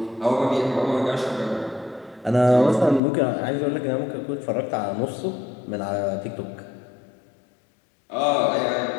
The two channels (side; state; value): right; drops out; at 3.0 s